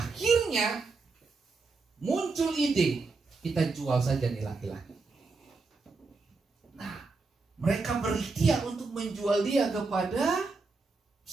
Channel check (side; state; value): left; quieter; 4.0 dB